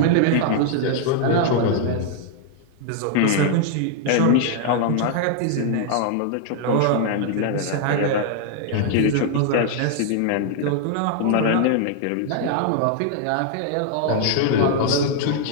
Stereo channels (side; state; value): both; different; correlation 0.00